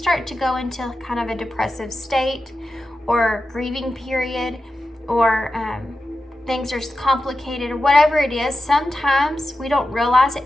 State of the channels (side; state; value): both; normal; correlation 0.92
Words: to go into kind of a depressive state or grieving period, or things are complicated or whatever it is, sometimes we don't realize it